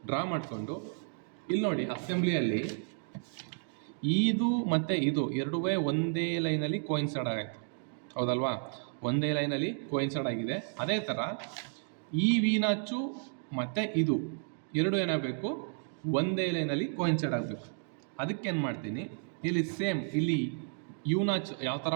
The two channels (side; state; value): left; silent; 56 dB below the other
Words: ಡ್ರಾ ಮಾಡಿಕೊಂಡು ಇಲ್ಲಿ ನೋಡಿ, ಅಸೆಂಬ್ಲಿಯಲ್ಲಿ ಇದು ಮತ್ತು ಇದು ಎರಡೂ ಒಂದೇ ಲೈನಲ್ಲಿ ಕೋಯಿನ್ಸೈಡ್ ಆಗಾಯ್ತು, ಹೌದಲ್ವಾ? ಒಂದೇ ಲೈನಲ್ಲಿ ಕೋಯಿನ್ಸೈಡ್ ಆಗಿದೆ. ಅದೇ ಥರ ಈ ವಿ ನಾಚು ಮತ್ತು ಇದು ಎರಡು ಏನಾಗಬೇಕು, ಒಂದೇ ಲೈನಲ್ಲಿ ಕೋಯಿನ್ಸೈಡ್ ಆಗಬೇಕು. ಅದಕ್ಕೇನು ಮಾಡ್ತೀನಿ, ಇಲ್ಲಿ ಸೇಮ್ ಇಲ್ಲಿ ಯು ನಾಚ್ ಯಾವ ಥರ